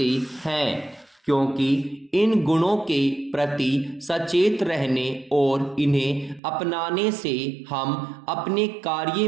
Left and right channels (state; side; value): drops out; left; at 6.4 s